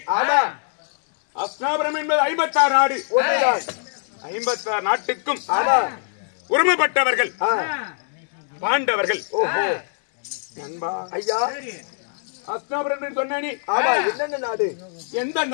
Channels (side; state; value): right; silent; digital silence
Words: அஸ்னாபுரம் என்பது 56 நாடு. 56 நாட்டுக்கும் உரிமைப்பட்டவர்கள் பாண்டவர்கள். நண்பா ஐயா, அஸ்னாபுரம் என்று சொன்னேனே, என்னென்ன நாடு?